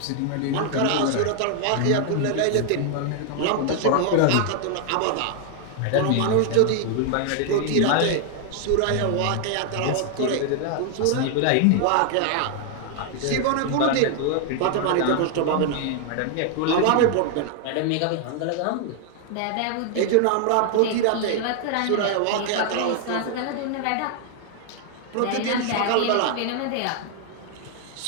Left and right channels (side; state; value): both; different; correlation 0.00